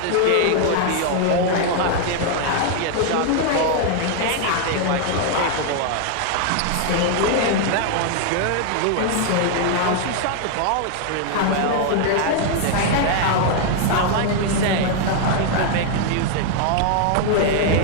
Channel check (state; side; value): different; both; correlation 0.00